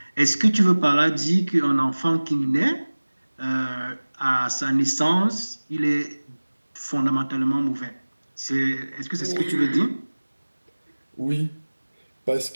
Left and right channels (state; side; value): inverted; both; correlation -1.00